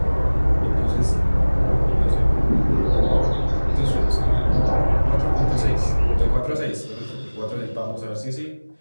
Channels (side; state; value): both; inverted; correlation -1.00